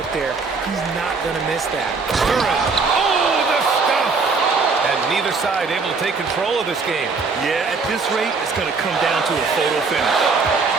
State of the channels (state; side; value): quieter; left; 4.5 dB